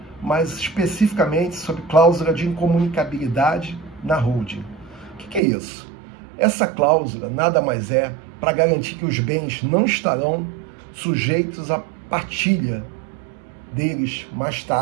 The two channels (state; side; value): drops out; left; at 5.4 s